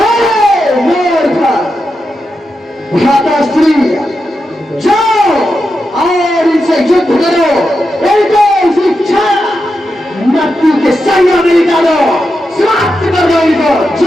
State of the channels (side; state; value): both; normal; correlation 0.88